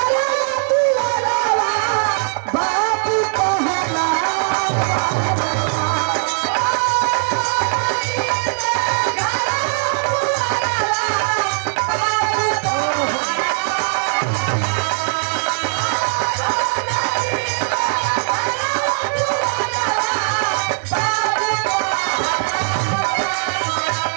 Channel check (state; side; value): silent; left; digital silence